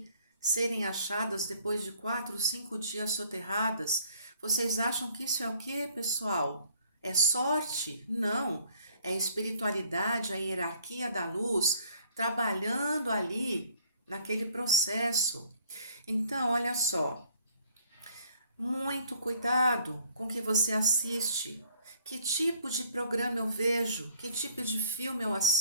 serem achadas depois de 4, 5 dias soterradas? Vocês acham que isso é o quê, pessoal? É sorte? Não. É a espiritualidade, a hierarquia da luz trabalhando ali naquele processo. Então, olha só, muito cuidado com o que você assiste. Que tipo de programa eu vejo? Que tipo de filme eu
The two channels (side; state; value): both; inverted; correlation -0.61